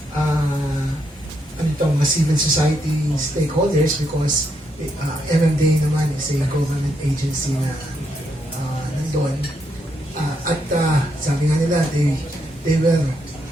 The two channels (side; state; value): both; normal; correlation 0.78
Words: mga civil society stakeholders because MMDA naman is a government agency na nandun. Sabi nga nila, they were